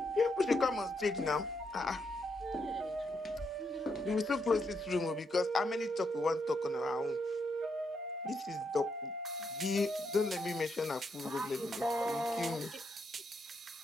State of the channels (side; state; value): both; normal; correlation 0.79